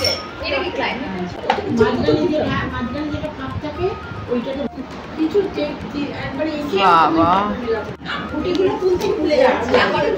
এটা কি ক্লাইমেট? বাবা,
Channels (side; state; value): both; identical; correlation 1.00